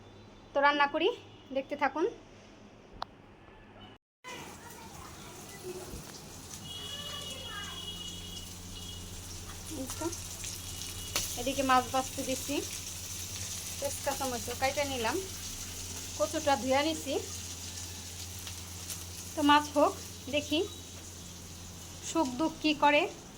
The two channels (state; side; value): identical; both; correlation 1.00